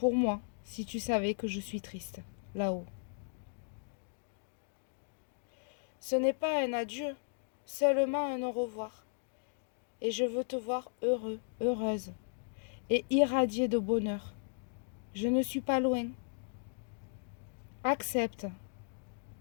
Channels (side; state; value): right; silent; digital silence